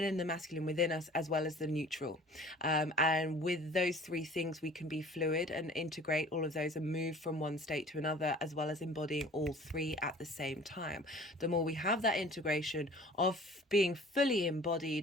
and the masculine within us, as well as the neutral. And with those three things, we can be fluid and integrate all of those and move from one state to another, as well as embodying all three at the same time. The more we have that integration of being fully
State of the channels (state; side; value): normal; both; correlation 0.47